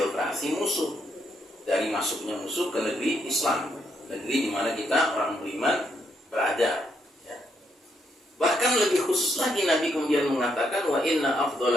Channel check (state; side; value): normal; both; correlation 0.76